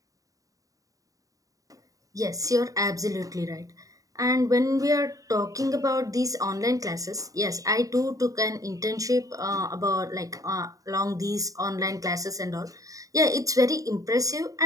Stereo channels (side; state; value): left; late; 0.16 ms